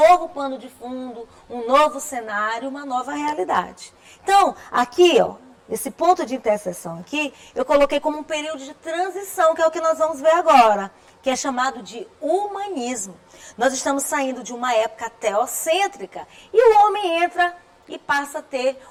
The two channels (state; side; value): identical; both; correlation 1.00